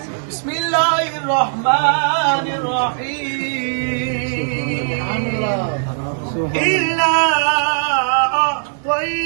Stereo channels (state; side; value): silent; left; digital silence